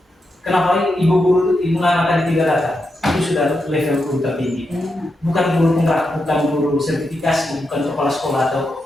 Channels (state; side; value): normal; both; correlation 0.86